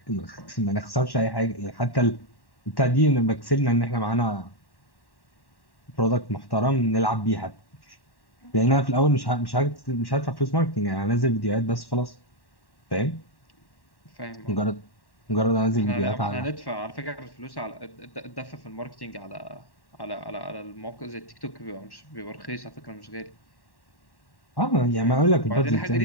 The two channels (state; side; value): late; right; 1.1 ms